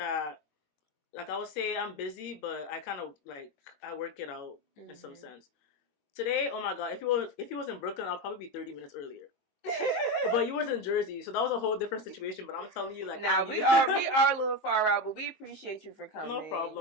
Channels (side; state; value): right; late; 22 ms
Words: like, I would say I'm busy, but I kind of like, I work it out in some sense. Today, oh my god, if he was in Brooklyn, I'll probably be 30 minutes earlier. But you was in Jersey, so that was a whole different situation. But I'm telling you, like, we are a little far out, but we appreciate you for coming. No